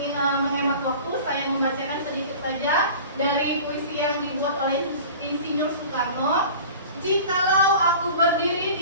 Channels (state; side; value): inverted; both; correlation -0.40